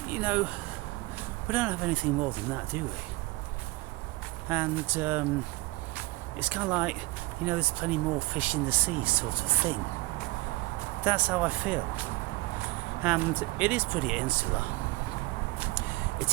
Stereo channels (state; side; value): quieter; left; 21.9 dB